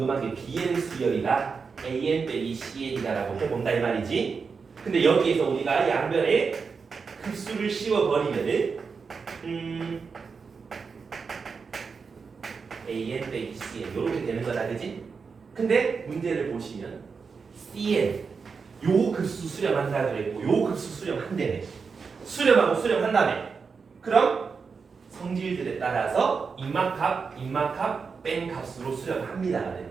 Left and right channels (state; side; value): quieter; left; 5.3 dB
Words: 게 BN 수열이가 AN 빼기 CN이다라고 해본다 이 말이지. 근데 여기에서 우리가 양변에 급수를 씌워버리면은 AN 빼기 CN 이렇게 되는 거다 그지? 근데 문제를 보시면 CN 요 급수 수렴한다 그랬고 요 급수 수렴한다네. 수렴하고 수렴한다며. 그럼 성질들에 따라서 입막값, 뺀 값으로 수렴합니다가